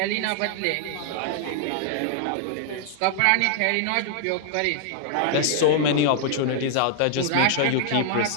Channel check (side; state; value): both; different; correlation -0.01